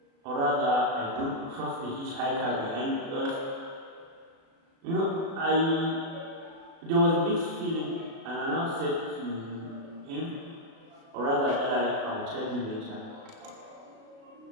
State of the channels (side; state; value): left; late; 36 ms